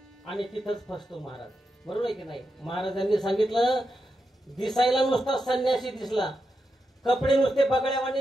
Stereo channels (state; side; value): normal; both; correlation 0.87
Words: आणि तिथंच फसतो महाराज. बरोबर आहे की नाही? महाराजांनी सांगितलं दिसायला नुसता संन्यासी दिसला, कपडे नुसते बगड्यावानी